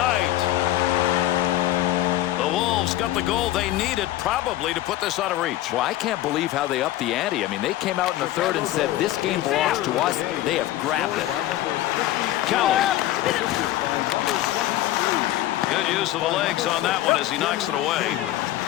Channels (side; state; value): right; quieter; 14.7 dB